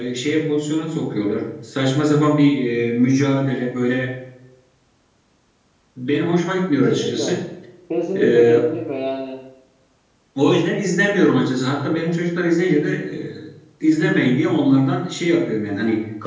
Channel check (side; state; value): both; identical; correlation 1.00